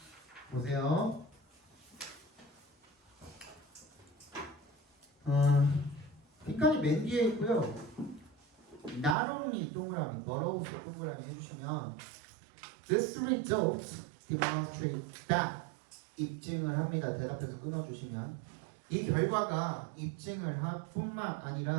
보세요. 빈칸이 맨 뒤에 있고요. Not only 동그라미, but also 동그라미 해주시면 This result demonstrate that 입증을 합니다. 대답해서 끊어주시면 이 결과가 입증을 할 뿐만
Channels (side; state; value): left; drops out; at 9.2 s